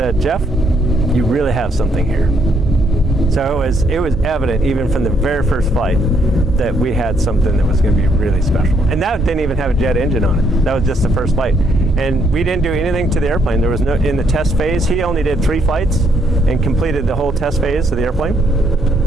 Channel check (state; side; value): normal; both; correlation 0.71